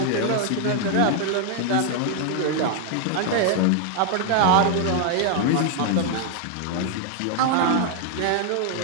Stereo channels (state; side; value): different; both; correlation 0.00